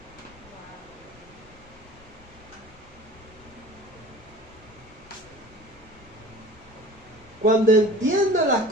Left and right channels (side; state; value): both; normal; correlation 0.40